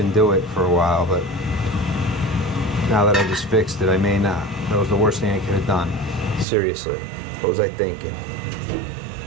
do it for a while. But now that I just fixed it, I may not. That was the worst thing I could have done. Seriously, what was I thinking? I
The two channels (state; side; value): drops out; left; at 6.5 s